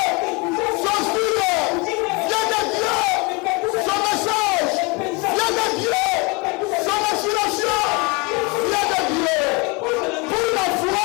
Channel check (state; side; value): quieter; right; 28.1 dB